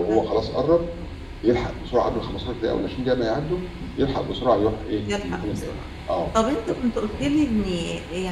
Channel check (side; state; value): both; identical; correlation 1.00